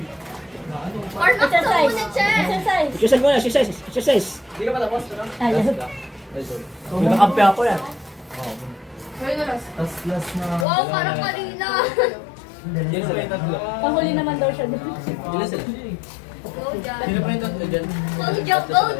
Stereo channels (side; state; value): right; drops out; at 10.7 s